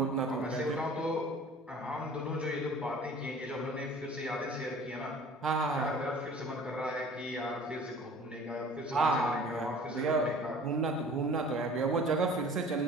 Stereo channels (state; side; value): normal; both; correlation 0.46